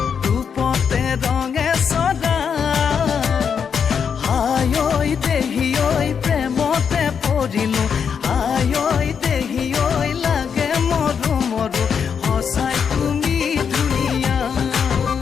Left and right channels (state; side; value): quieter; right; 6.9 dB